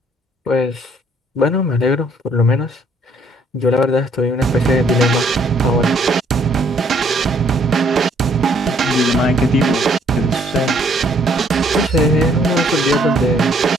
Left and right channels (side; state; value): both; normal; correlation 0.64